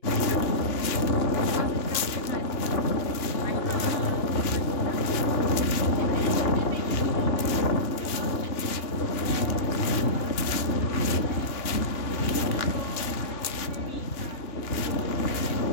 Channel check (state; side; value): late; right; 2.9 ms